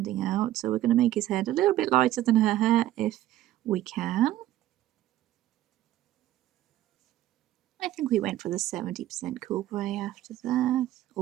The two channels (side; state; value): left; quieter; 14.1 dB